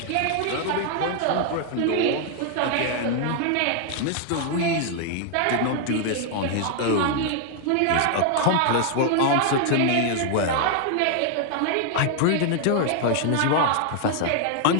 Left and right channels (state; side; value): different; both; correlation 0.00